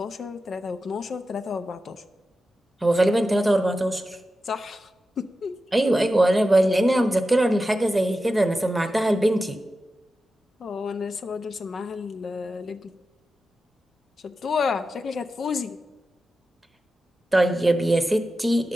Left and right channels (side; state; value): both; normal; correlation 0.92